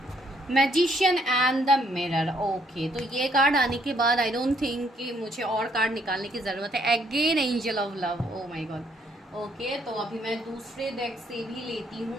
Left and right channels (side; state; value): both; normal; correlation 0.69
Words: Magician and the mirror, okay. तो ये कार्ड आने के बाद आई डोंट थिंक कि मुझे और कार्ड निकालने की ज़रूरत है। Again angel of love, O my God, okay. तो अभी मैं दूसरे डेक से भी लेती